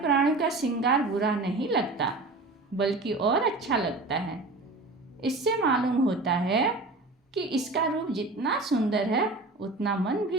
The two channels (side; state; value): left; quieter; 3.2 dB